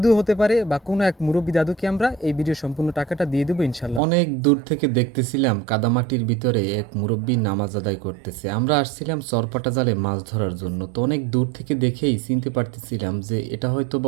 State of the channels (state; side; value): drops out; left; at 4.0 s